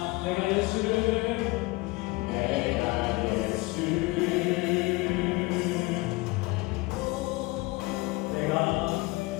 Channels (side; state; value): right; quieter; 23.2 dB